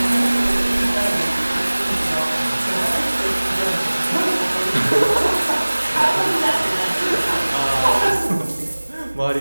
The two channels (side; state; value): both; inverted; correlation -1.00